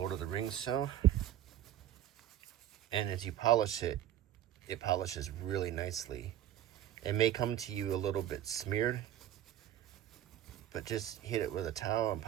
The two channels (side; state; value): left; quieter; 11.7 dB